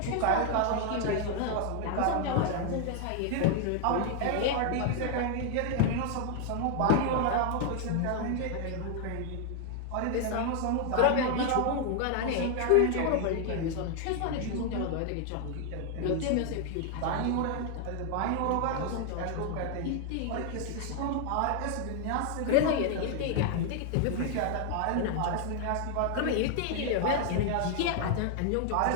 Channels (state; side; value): different; both; correlation 0.00